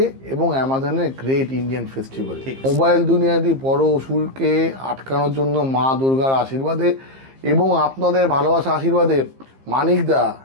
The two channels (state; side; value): late; left; 15 ms